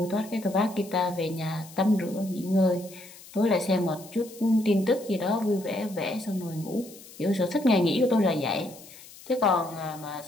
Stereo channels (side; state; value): left; noise; hiss, 19 dB below the sound